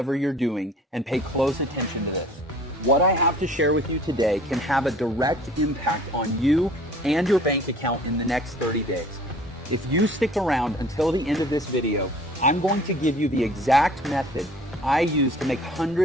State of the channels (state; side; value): normal; both; correlation 0.50